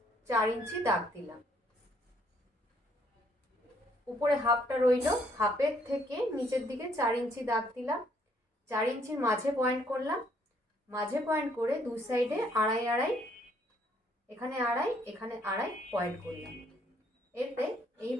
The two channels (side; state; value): both; normal; correlation 0.67